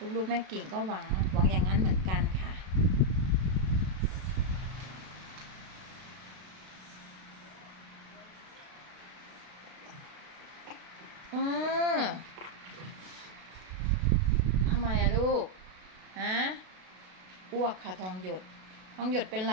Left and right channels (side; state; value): left; late; 32 ms